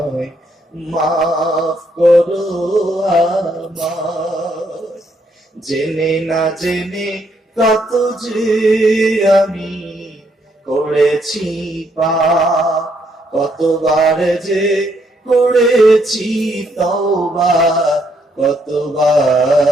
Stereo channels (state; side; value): normal; both; correlation 0.73